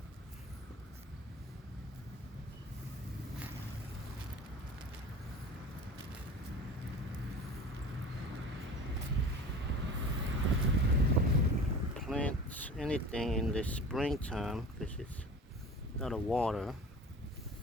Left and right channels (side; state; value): both; normal; correlation 0.39